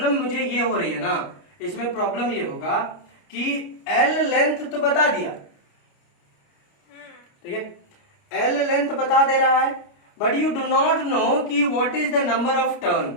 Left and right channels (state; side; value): late; right; 29 ms